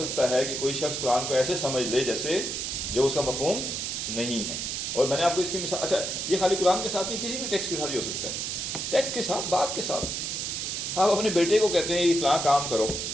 ہے کہ کوئی شخص قرآن کو ایسے سمجھ لے جیسے جو اس کا مفہوم نہیں ہے. اور میں نے آپ کو اس کی مثال, اچھا یہ خالی قرآن کے ساتھ نہیں, کسی بھی ٹیکسٹ کے ساتھ ہی ہو سکتا ہے. ٹیکسٹ کے ساتھ, بات کے ساتھ. آپ اپنے بیٹے کو کہتے ہیں یہ فلاں کام کرو,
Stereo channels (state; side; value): noise; right; hiss, 3 dB below the sound